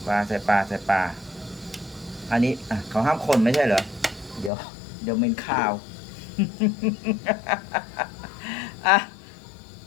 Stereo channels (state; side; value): drops out; right; at 4.5 s